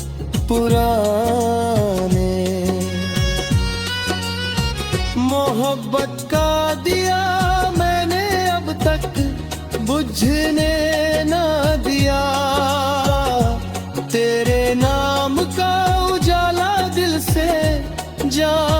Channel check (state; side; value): identical; both; correlation 1.00